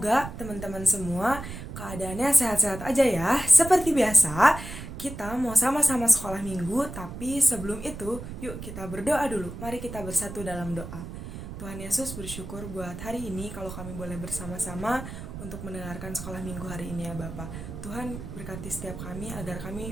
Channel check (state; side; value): noise; right; rumble, 10 dB below the sound